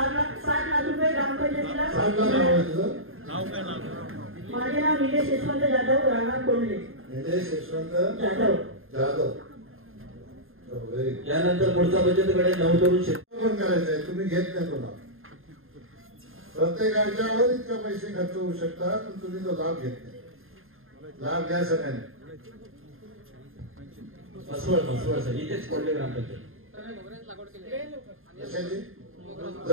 लाख रुपये ग्रामपंचायतीला. माझे नाव निलेश यशवंत जाधव, राहणार कोंडले. निलेश यशवंत जाधव. यानंतर पुढचा बचतकडे नवतरुण शेतकरी करायचं आहे. तुम्ही घेत नाही कोणा, प्रत्येकाच्यावर इतका पैसे खर्च होऊ शकतात, पण तुम्ही तो लाभ घेत नाही. लाभ घ्या सगळ्यांनी. मसवड सर इथेच कोंडले ग्रामपंचायत.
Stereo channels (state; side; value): late; left; 0.60 ms